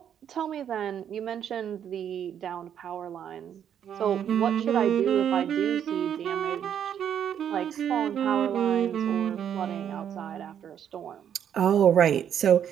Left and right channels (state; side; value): quieter; left; 9.1 dB